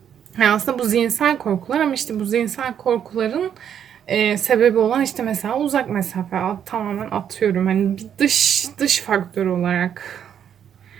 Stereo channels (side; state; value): left; quieter; 8.9 dB